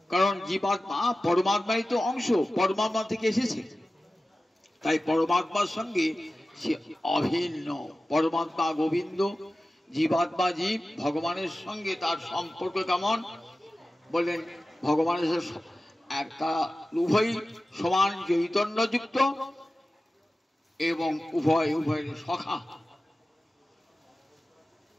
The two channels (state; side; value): normal; both; correlation 0.95